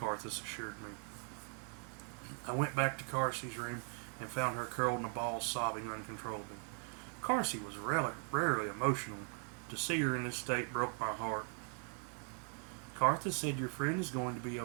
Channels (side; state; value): left; quieter; 36.6 dB